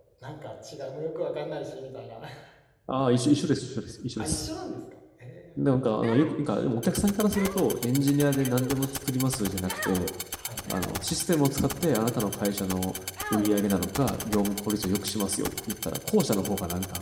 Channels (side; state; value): both; identical; correlation 1.00